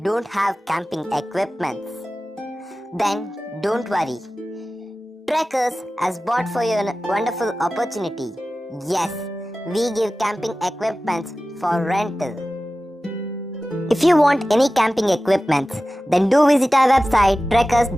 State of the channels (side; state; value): both; normal; correlation 0.96